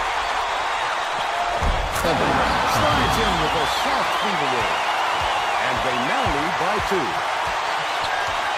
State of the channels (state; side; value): identical; both; correlation 1.00